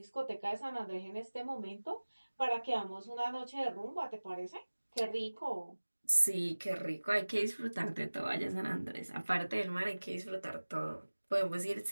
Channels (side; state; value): both; inverted; correlation -1.00